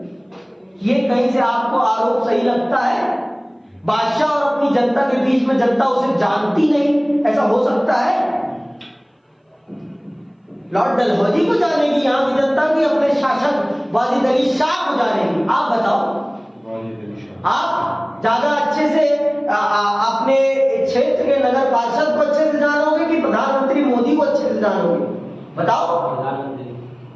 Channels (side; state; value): both; identical; correlation 1.00